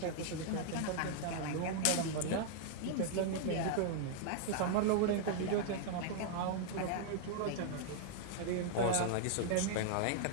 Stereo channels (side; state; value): both; different; correlation -0.01